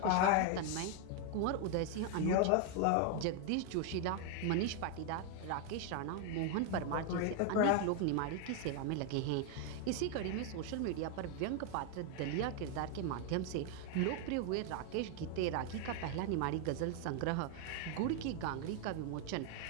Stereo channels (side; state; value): both; different; correlation 0.01